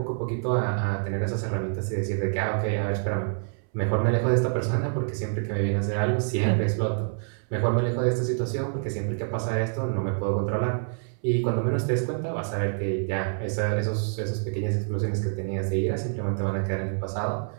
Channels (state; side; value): silent; left; 60 dB below the other